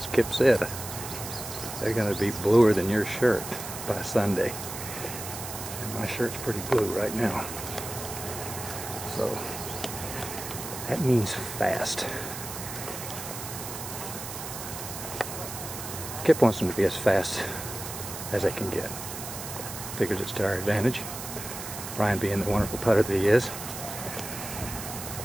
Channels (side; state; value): right; noise; hiss, 8 dB below the sound